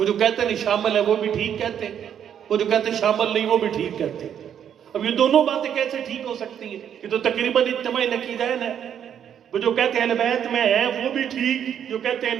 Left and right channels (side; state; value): left; quieter; 9.0 dB